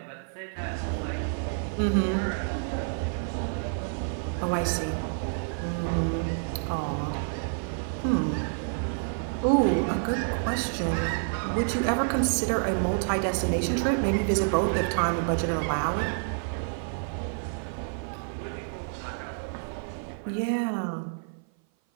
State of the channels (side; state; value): left; silent; 56 dB below the other